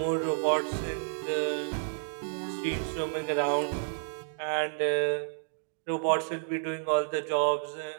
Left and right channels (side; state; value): left; silent; digital silence